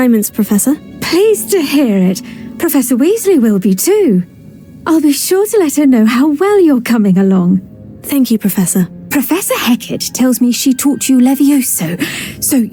Professor. Pleased to hear it. Professor Weasley will be too. I'll be sure to let her know how well you're coming along. Thank you, Professor. Professor Hecat tells me she taught you Levioso, so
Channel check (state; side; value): identical; both; correlation 1.00